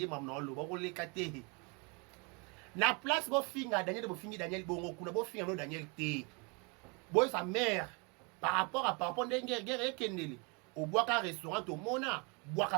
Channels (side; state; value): left; quieter; 31.8 dB